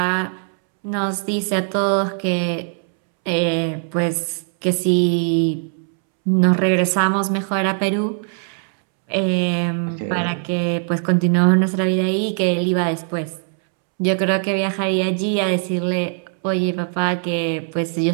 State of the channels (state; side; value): silent; left; 65 dB below the other